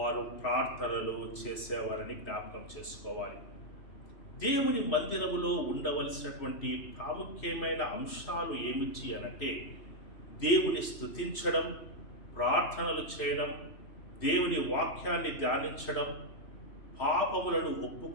ప్రార్థనలు చేసేవారని జ్ఞాపకం చేసుకోవాలి. దేవుని మందిరములో ఉండవలసినటువంటి ప్రాముఖ్యమైన అంశాలు ఏమిటి అనంటే దేవుని స్తుతించడం, ప్రార్థనలు చేయడం, దేవుని వాక్యాన్ని ధ్యానించడం, పాపములను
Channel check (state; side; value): late; right; 3.1 ms